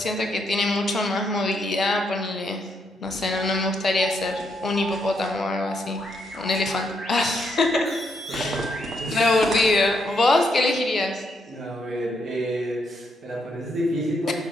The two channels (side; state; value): both; normal; correlation 0.77